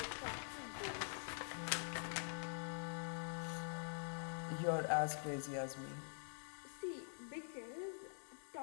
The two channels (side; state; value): right; silent; digital silence